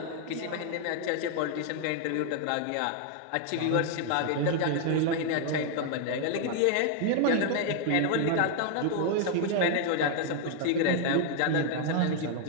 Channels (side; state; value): both; different; correlation 0.00